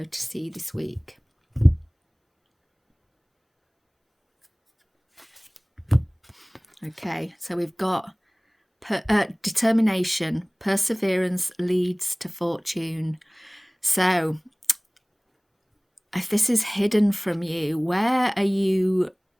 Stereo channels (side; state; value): both; identical; correlation 1.00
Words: to see this week? Okay, so we've got determination, perseverance leads to fortune. So if this is hidden from you, where are you